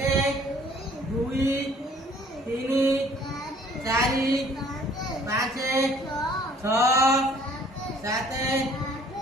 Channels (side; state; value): both; normal; correlation 0.56